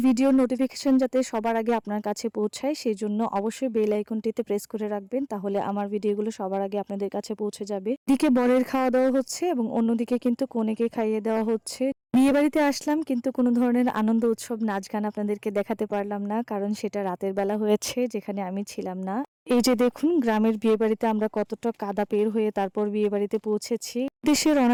ভিডিওর নোটিফিকেশন যাতে সবার আগে আপনার কাছে পৌঁছায় সেই জন্য অবশ্যই বেল আইকনটিতে প্রেস করে রাখবেন, তাহলে আমার ভিডিওগুলো সবার আগে আপনাদের কাছে পৌঁছে যাবে। এদিকে বরের খাওয়া দাওয়া হচ্ছে এবং অন্যদিকে কিন্তু কনেকে খাইয়ে দেওয়া হচ্ছে। বিয়ে বাড়িতে আসলাম কিন্তু কোনো ধরনের আনন্দ উৎসব নাচ গান আপনাদেরকে দেখাতে পারলাম না, কারণ সেটা রাতের বেলা হয়েছে যেখানে আমি ছিলাম না। এই যে দেখুন গ্রামের বিয়ে বাড়িতে আমরা কতটা কাদা পের হয়ে তারপর বিয়ে বাড়িতে পৌঁছেছি। দেশে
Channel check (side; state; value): both; identical; correlation 1.00